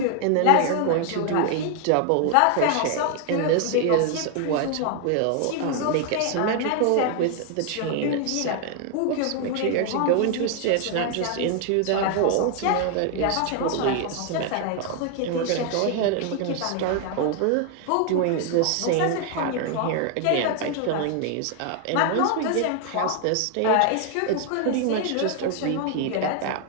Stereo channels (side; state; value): both; different; correlation 0.00